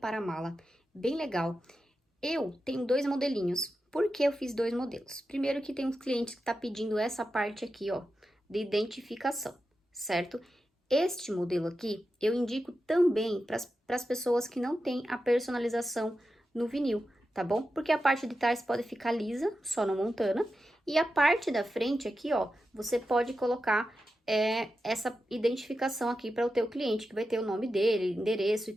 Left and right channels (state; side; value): normal; both; correlation 0.90